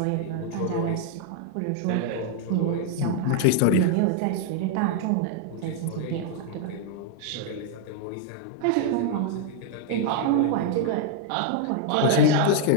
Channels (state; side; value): different; both; correlation 0.00